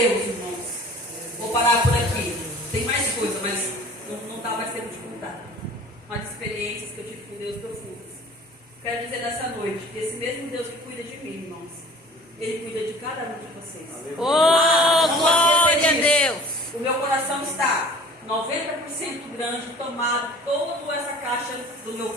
irmãos. Vou parar por aqui. Tem mais coisa, mas não dá mais tempo de contar. Umas experiências que eu tive com Deus profundas. Quero dizer nessa noite que esse mesmo Deus que cuida de mim, irmãos, Ele cuida de cada um de vocês. Oh, glória a Deus! O meu coração está 90% grande, tomado toda essa caixa do meu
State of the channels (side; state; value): both; normal; correlation 0.46